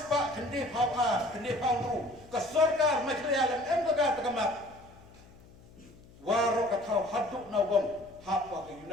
pak kendi pau tu. Kesorkar macam alam embaga terkamap. Waro katau haduk nawang hapa ke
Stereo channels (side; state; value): left; noise; hum, 24 dB below the sound